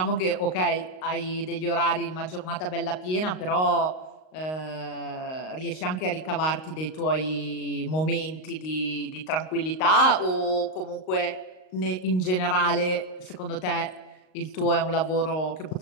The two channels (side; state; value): right; late; 38 ms